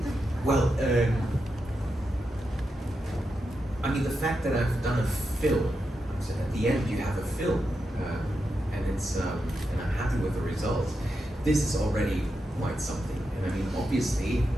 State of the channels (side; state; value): both; normal; correlation 0.87